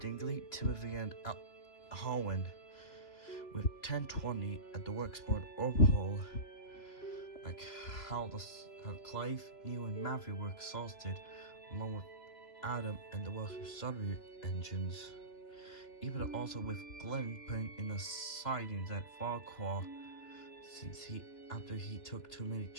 Dingley, Timothy, and Holwyn, with 1020 at the worksport overhaul, like how Clive, Neil, and Matthew were exhausted, along with Adam and the Welsh-Surrey engines. Even also with Glenn putting in the sidings at Farquhar, since after he took too many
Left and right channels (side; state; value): right; late; 3.0 ms